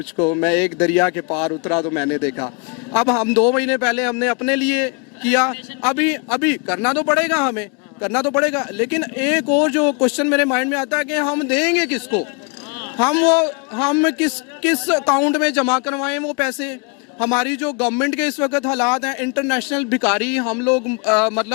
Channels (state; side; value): quieter; right; 33.2 dB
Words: मैं एक दरिया के पार उतरा तो मैंने देखा। अब हम 2 महीने पहले हमने अपने लिए किया, अभी अभी करना तो पड़ेगा, हमें करना तो पड़ेगा। लेकिन एक और जो क्वेश्चन मेरे माइंड में आता है कि हम देंगे किसको, हम किस किस अकाउंट में जमा करवाएं वो पैसे। हमारी जो गवर्नमेंट के इस वक्त हालात हैं, इंटरनेशनल भिखारी हम लोग,